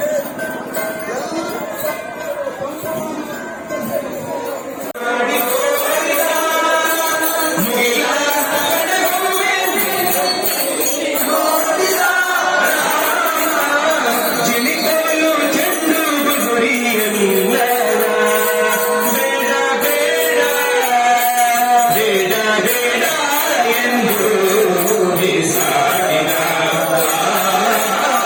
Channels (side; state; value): both; identical; correlation 1.00